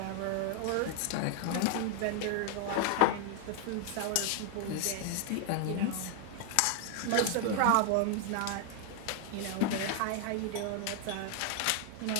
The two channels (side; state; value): both; different; correlation 0.00